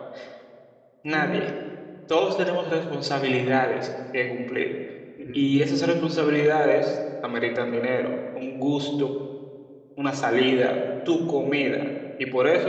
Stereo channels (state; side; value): identical; both; correlation 1.00